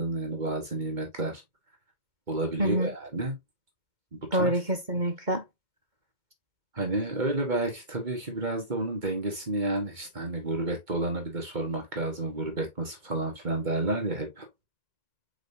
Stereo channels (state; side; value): late; left; 2.2 ms